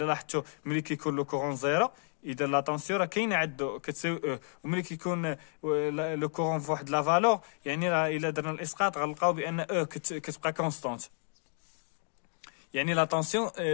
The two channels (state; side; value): silent; right; 57 dB below the other